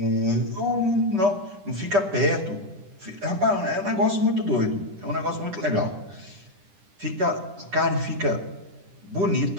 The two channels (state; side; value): late; left; 10 ms